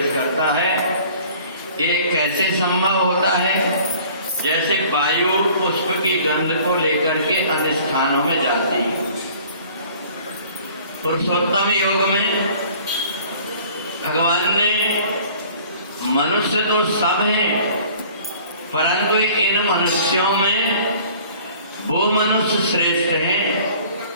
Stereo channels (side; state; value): both; inverted; correlation -0.50